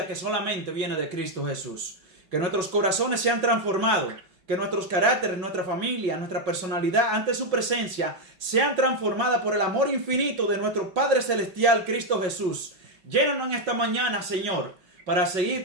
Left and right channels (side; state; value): left; late; 5.2 ms